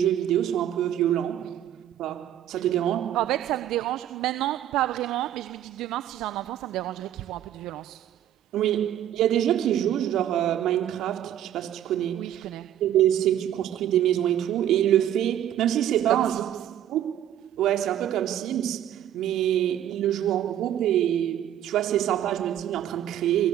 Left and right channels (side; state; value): left; quieter; 11.2 dB